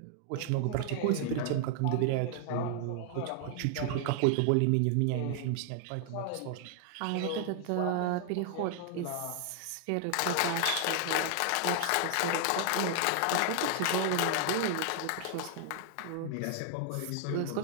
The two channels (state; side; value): different; both; correlation 0.00